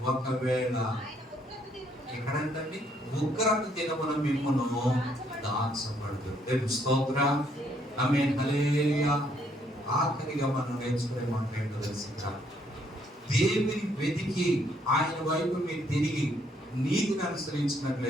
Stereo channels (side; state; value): both; normal; correlation 0.69